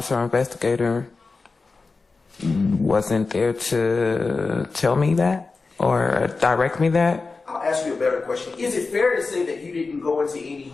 investigator wasn't there to tell me that or direct me that. I'll ask you a better question. Is it fair to say that you didn't go into any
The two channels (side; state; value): right; quieter; 4.0 dB